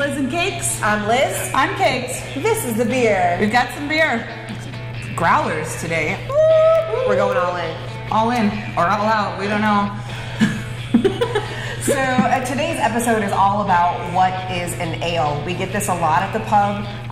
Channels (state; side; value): identical; both; correlation 1.00